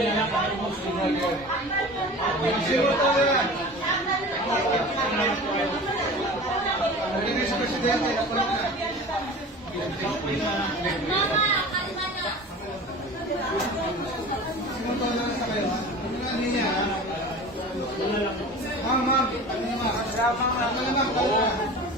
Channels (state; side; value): normal; both; correlation 0.37